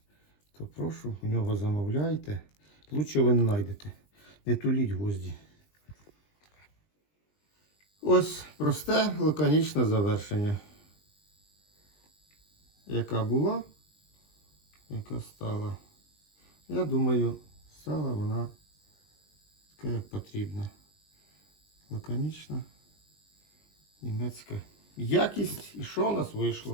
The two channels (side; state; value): right; late; 20 ms